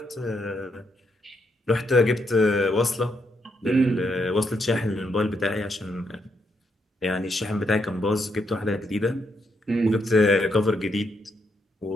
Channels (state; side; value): normal; both; correlation 0.78